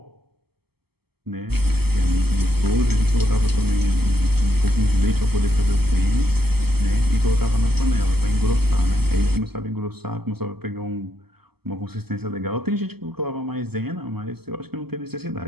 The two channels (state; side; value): late; left; 0.96 ms